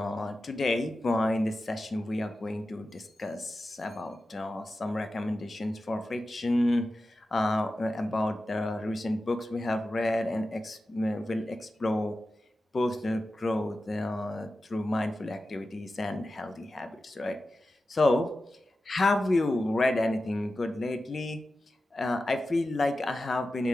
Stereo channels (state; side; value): normal; both; correlation 0.93